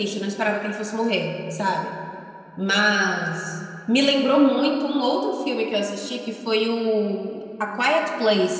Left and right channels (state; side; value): identical; both; correlation 1.00